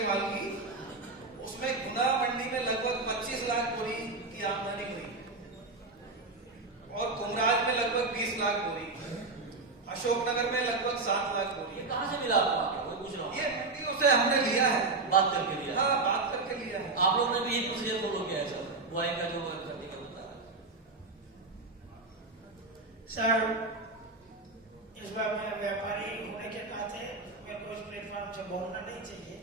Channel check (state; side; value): quieter; left; 3.6 dB